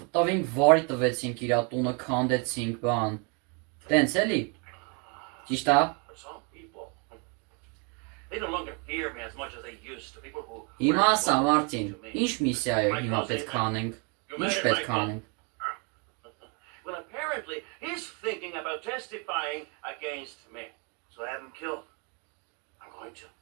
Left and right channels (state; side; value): quieter; left; 35.0 dB